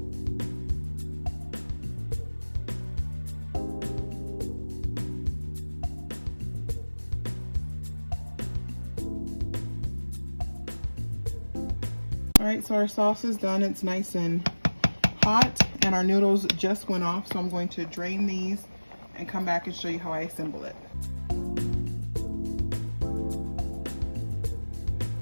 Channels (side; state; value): both; inverted; correlation -1.00